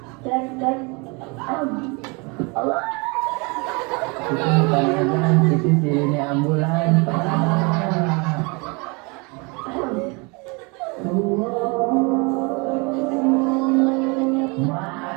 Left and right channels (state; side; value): quieter; left; 29.7 dB